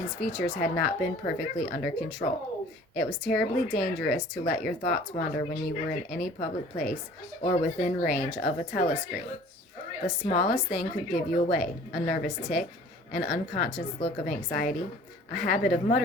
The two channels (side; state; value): both; normal; correlation 0.49